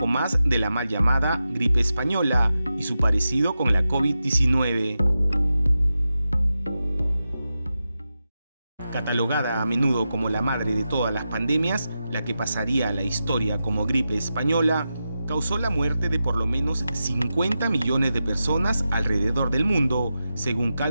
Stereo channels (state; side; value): inverted; both; correlation -0.90